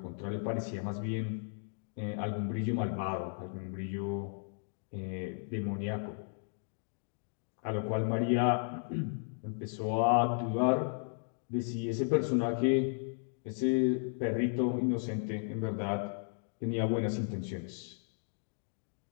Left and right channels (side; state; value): right; silent; digital silence